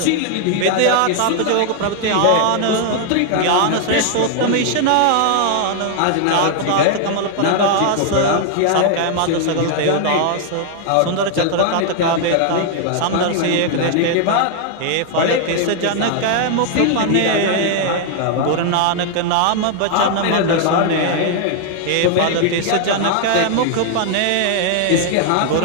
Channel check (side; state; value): both; different; correlation 0.00